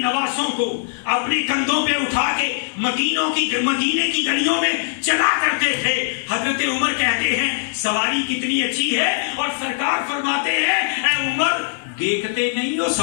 کو اپنے کندھوں پہ اٹھا کے مدینے کی گلیوں میں چلا کرتے تھے۔ حضرت عمر کہتے ہیں سواری کتنی اچھی ہے، اور سرکار فرماتے ہیں اے عمر دیکھتے نہیں ہو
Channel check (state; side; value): silent; right; 65 dB below the other